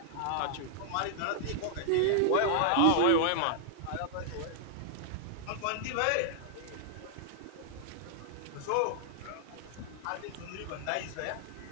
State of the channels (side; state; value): both; different; correlation -0.01